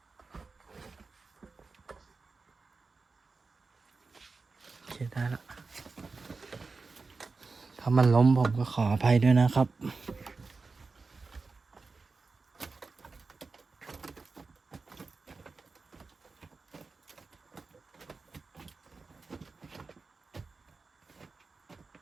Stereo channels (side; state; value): left; quieter; 4.1 dB